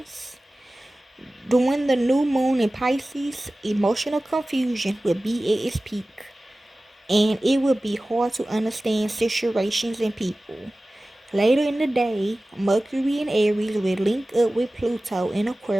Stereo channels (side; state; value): both; normal; correlation 0.97